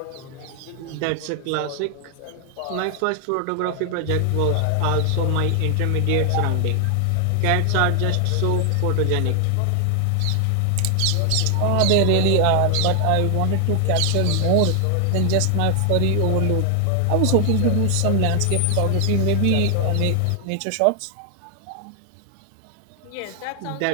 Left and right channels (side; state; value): both; different; correlation 0.00